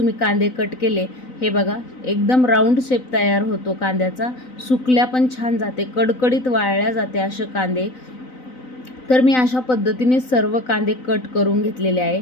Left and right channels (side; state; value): right; late; 3.9 ms